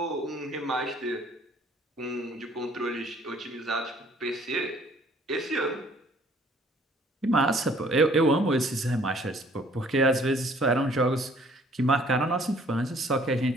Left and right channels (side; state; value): both; normal; correlation 0.58